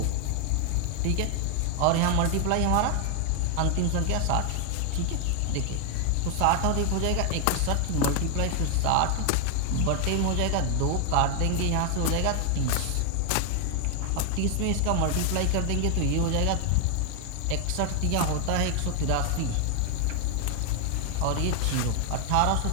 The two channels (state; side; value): different; both; correlation 0.00